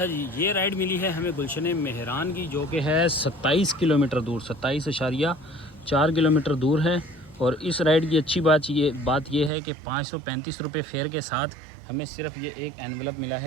जी, ये राइड मिली है हमें गुलशन मेहरान की, जो कि है 27 किलोमीटर दूर, 27.4 किलोमीटर दूर है। और इस राइड की अच्छी बात ये है कि 535 रुपये फेयर के साथ हमें सिर्फ ये एक एनवलप मिला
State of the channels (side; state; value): left; drops out; at 9.5 s